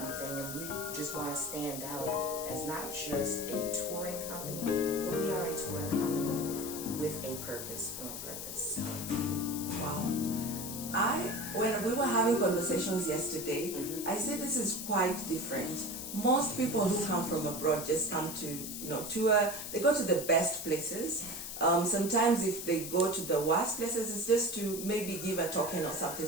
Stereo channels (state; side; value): noise; left; hiss, 7 dB below the sound